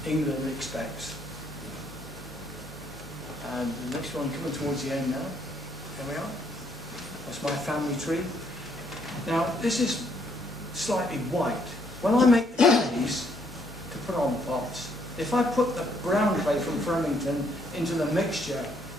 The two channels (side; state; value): both; normal; correlation 0.70